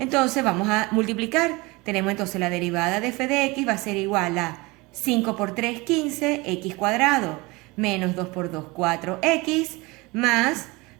vamos a multiplicar. Tenemos entonces la derivada de f de x va a ser igual a 5 por 3, 15, x cuadrado, menos 2 por 2, 4x, más...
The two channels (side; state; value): left; quieter; 24.0 dB